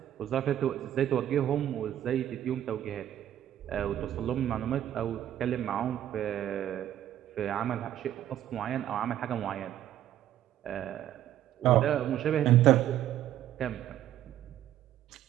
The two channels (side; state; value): left; quieter; 11.8 dB